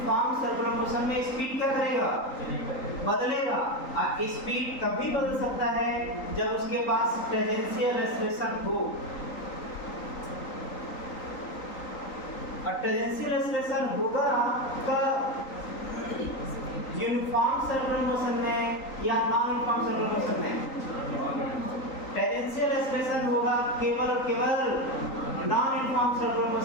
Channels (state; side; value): late; right; 3.9 ms